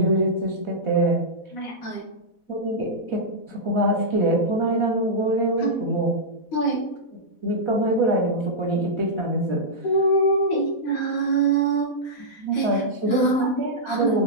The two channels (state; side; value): late; right; 4.1 ms